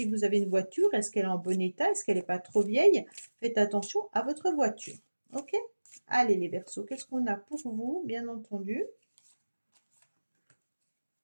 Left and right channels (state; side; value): inverted; both; correlation -1.00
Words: vous avez une voiture, est-ce qu'elle est en bon état? Est-ce qu'elle n'est pas trop vieille? Faites attention à votre voiture. OK? Allez les Verseaux, qu'est-ce qu'on a pour vous, bien entendu?